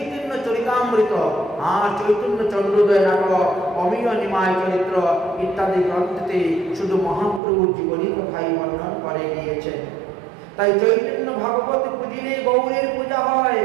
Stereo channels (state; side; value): drops out; left; at 7.4 s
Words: চরিতামৃত আর চৈতন্য চন্দ্রোদয় নাটক, অমিয় নিমায় চরিত্র ইত্যাদি গ্রন্থতে শুধু মহাপ্রভুর জীবনী কথাই বর্ণন করে গিয়েছেন। তাই চৈতন্য ভাগবত পুজিলে গৌরের পূজা হয়,